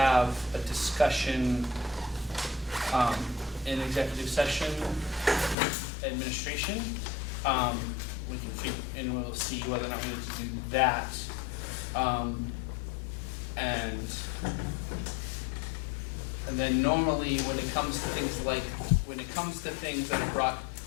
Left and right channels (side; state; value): right; drops out; at 5.6 s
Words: a discussion in executive session with administration. We can figure, and we'll see whether or not we need to do that. And then normally when it comes to things that are brought